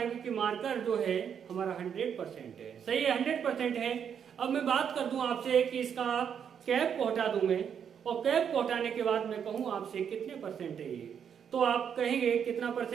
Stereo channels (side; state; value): left; quieter; 7.9 dB